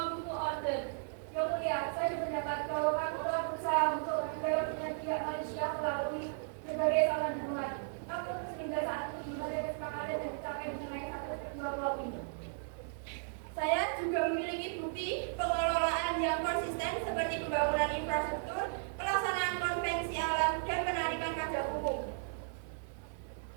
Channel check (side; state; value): left; silent; 54 dB below the other